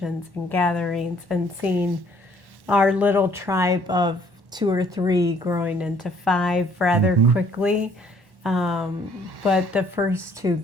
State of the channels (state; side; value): late; left; 1.1 ms